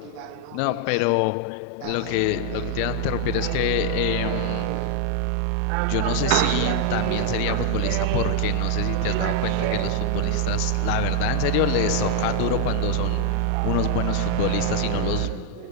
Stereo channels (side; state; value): both; different; correlation 0.00